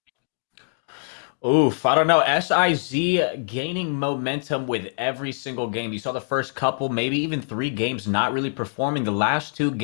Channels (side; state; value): right; silent; digital silence